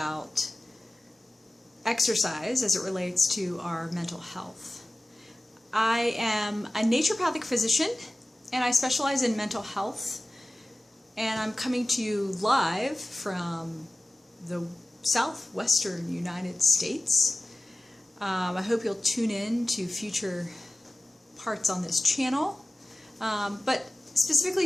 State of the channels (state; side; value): normal; both; correlation 0.97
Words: exercise as it relates to our mental health. I am a naturopathic physician, and I specialize in mental health, and I'm coming to you live from the southwestern United States. I hope you'll tune in to future parts on this channel, but specifically